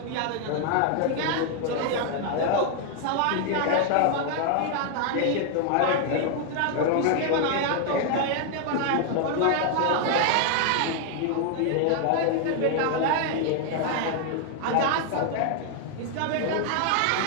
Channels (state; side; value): different; both; correlation 0.00